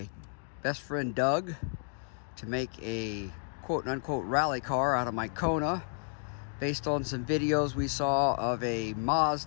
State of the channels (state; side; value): silent; right; 57 dB below the other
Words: best friend Doug to make a quote-unquote rally car out of my Kona based on some videos we saw of a